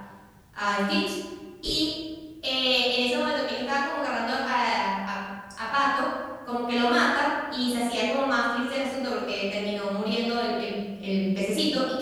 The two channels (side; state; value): both; identical; correlation 1.00